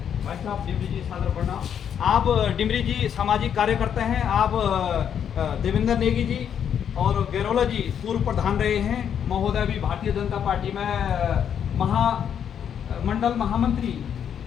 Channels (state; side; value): quieter; right; 8.5 dB